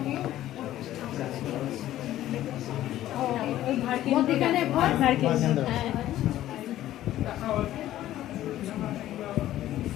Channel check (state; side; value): quieter; right; 13.5 dB